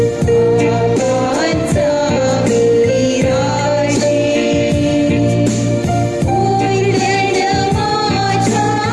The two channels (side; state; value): both; identical; correlation 1.00